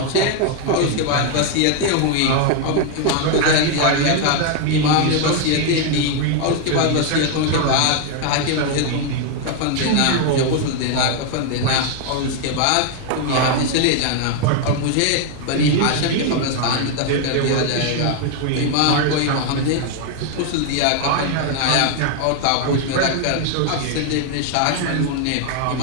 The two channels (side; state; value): both; different; correlation 0.01